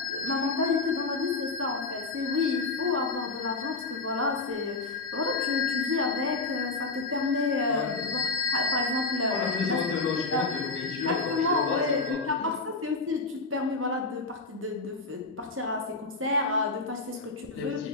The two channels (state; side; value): quieter; right; 3.5 dB